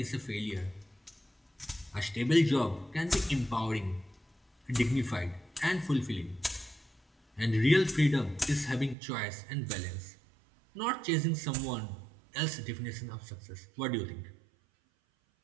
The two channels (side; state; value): left; drops out; at 9.0 s